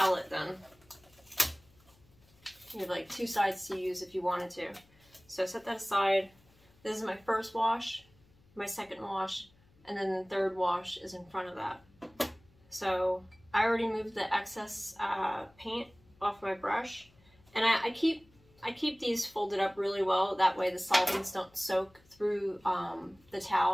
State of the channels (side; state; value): left; noise; hum, 30 dB below the sound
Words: then. You have like two sides to use if you wanted to. So set that aside. This is my first wash, my second wash, and then the third wash is in front of that. So I already moved the excess paint off my brush, and I keep these folded up really well. That way the solvents don't soak through the